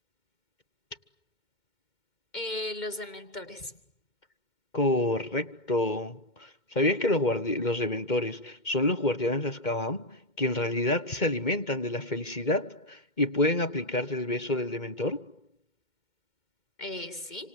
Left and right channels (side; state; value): right; late; 2.2 ms